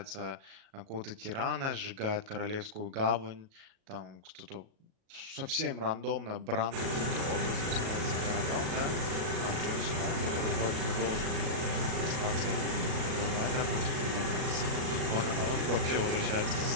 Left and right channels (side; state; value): left; late; 37 ms